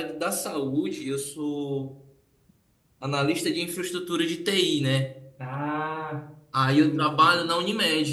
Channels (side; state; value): both; identical; correlation 1.00